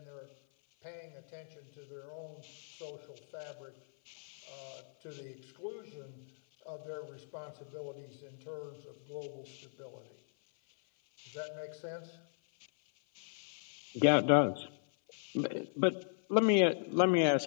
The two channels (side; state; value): right; silent; 53 dB below the other